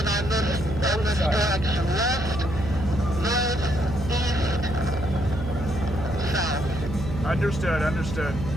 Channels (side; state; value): right; noise; hum, 7 dB below the sound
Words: on this direction. West, north, east, south. Understood.